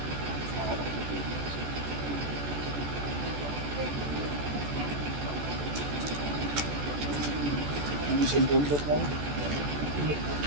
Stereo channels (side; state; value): left; late; 14 ms